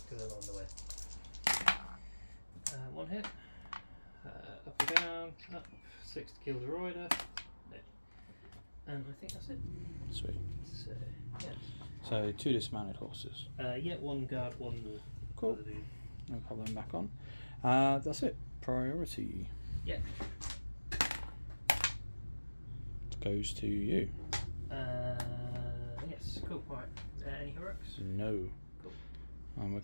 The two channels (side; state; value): both; inverted; correlation -1.00